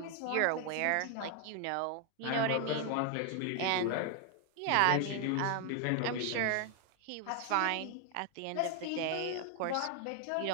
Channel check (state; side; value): different; both; correlation 0.00